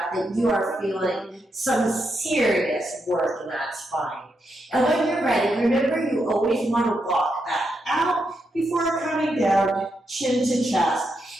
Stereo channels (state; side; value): normal; both; correlation 0.82